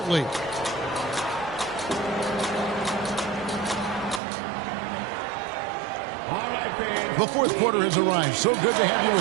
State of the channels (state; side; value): drops out; left; at 4.2 s